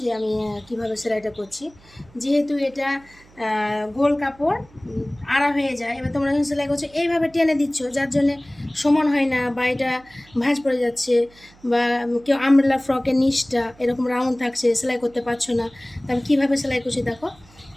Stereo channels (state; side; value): noise; right; hum, 26 dB below the sound